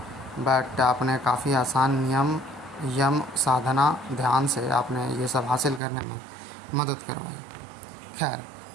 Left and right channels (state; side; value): drops out; left; at 5.8 s